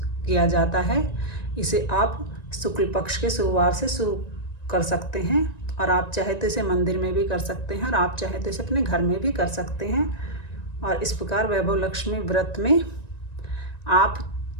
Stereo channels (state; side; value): late; right; 1.9 ms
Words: जाता है। इसे आप शुक्ल पक्ष के शुक्रवार से शुरू कर सकते हैं और आप चाहे तो इसे मंदिर में भी कर सकते हैं और आप चाहे तो इसे अपने घर में भी कर सकते हैं। और इस प्रकार वैभव लक्ष्मी व्रत में आप